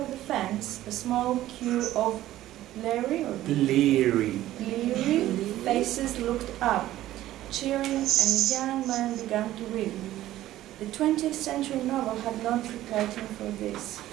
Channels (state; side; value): quieter; left; 14.4 dB